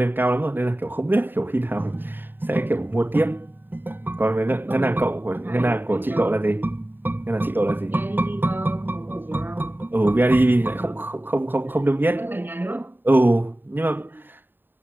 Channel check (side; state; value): left; late; 0.094 ms